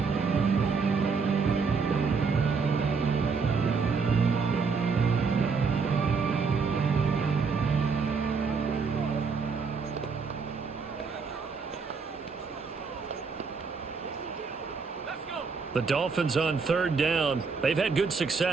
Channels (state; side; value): quieter; left; 5.1 dB